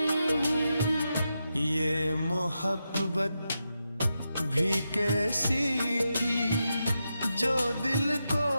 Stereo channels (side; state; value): both; inverted; correlation -0.87